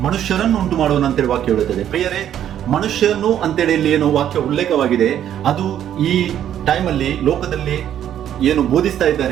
ಮನುಷ್ಯರನ್ನು ಉಂಟು ಮಾಡುವನು ಅಂತೇಳಿ ವಾಕ್ಯ ಹೇಳುತ್ತದೆ. ಪ್ರಿಯರೇ, ಮನುಷ್ಯನು ಅಂತೇಳಿ ಇಲ್ಲಿ ಏನು ವಾಕ್ಯ ಉಲ್ಲೇಖವಾಗಿದೆ, ಅದು ಈ ಟೈಮಲ್ಲಿ ಲೋಕದಲ್ಲಿ ಏನು ಬೋಧಿಸ್ತಾ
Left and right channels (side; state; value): left; quieter; 10.5 dB